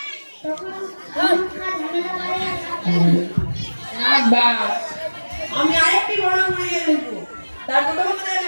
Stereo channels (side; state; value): both; inverted; correlation -1.00